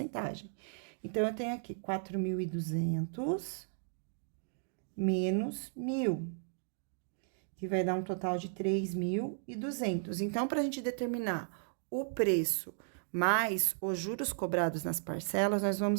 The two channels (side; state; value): left; silent; digital silence